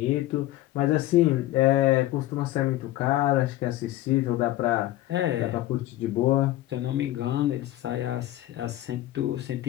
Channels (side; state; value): right; quieter; 15.3 dB